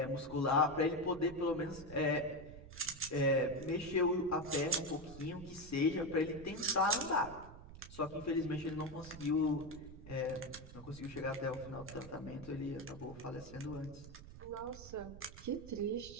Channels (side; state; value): right; noise; rumble, 15 dB below the sound